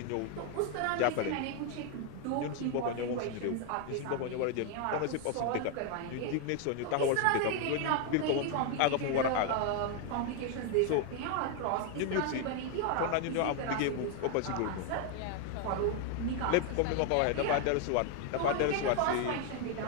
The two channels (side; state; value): both; different; correlation 0.01